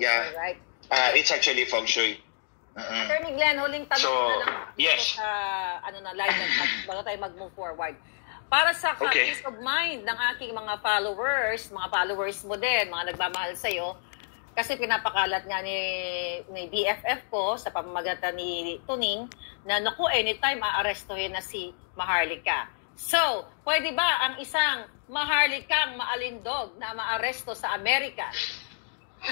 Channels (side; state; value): right; silent; digital silence